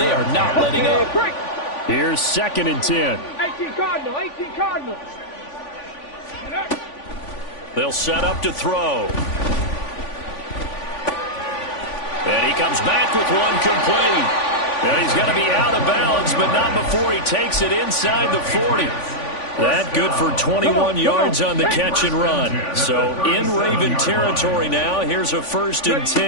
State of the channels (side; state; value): right; late; 3.5 ms